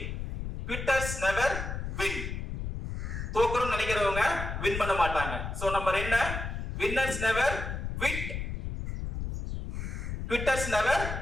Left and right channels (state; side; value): noise; left; rumble, 5 dB below the sound